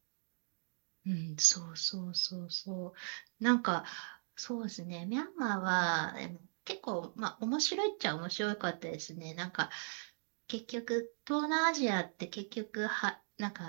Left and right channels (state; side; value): silent; left; digital silence